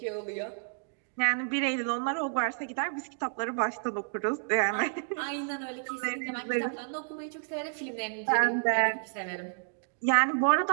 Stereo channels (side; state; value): left; silent; digital silence